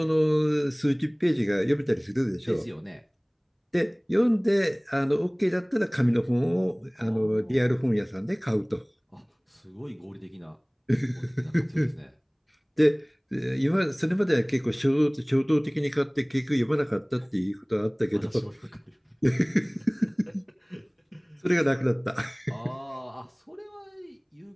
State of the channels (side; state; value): both; identical; correlation 1.00